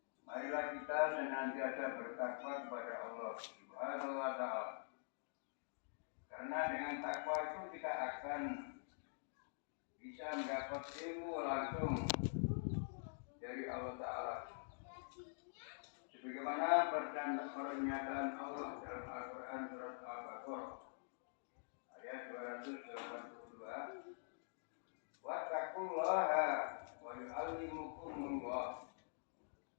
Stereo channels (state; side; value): silent; right; digital silence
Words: Marilah kita senantiasa bertakwa kepada Allah Subhanahu wa Ta'ala. Karena dengan takwa itu kita akan bisa mendapat ilmu langsung dari Allah Ta'ala. Sebagaimana pernyataan Allah dalam Al-Quran surat Al-Baqarah ayat 282, wattaqullaha wa yu'allimukumullah.